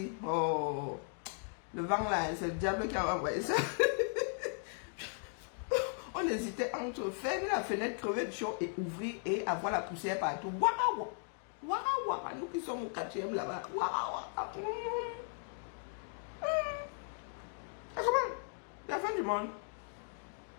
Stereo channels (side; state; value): right; silent; 53 dB below the other